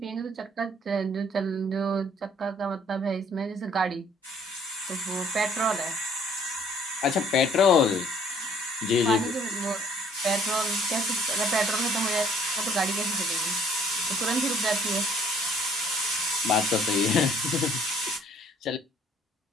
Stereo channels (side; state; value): both; normal; correlation 0.58